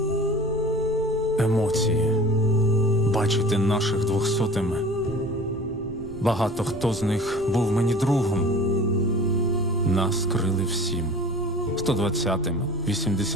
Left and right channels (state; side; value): noise; right; rumble, 16 dB below the sound